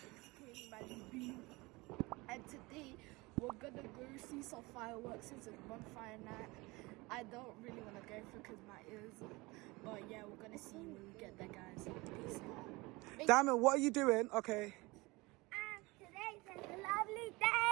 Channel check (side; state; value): left; quieter; 23.4 dB